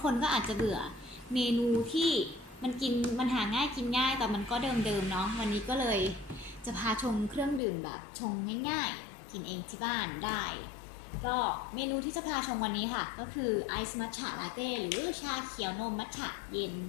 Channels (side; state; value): right; drops out; at 7.6 s